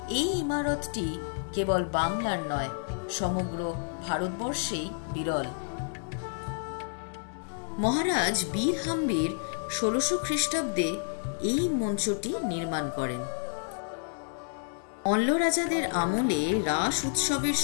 এই ইমারতটি কেবল বাংলার নয়, সমগ্র ভারতবর্ষেই বিরল। মহারাজ বীর হাম্বির 1600 খ্রিস্টাব্দে এই মঞ্চটি নির্মাণ করেন। অল্ল রাজাদের আমলে রাস উৎসবের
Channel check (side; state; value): right; silent; digital silence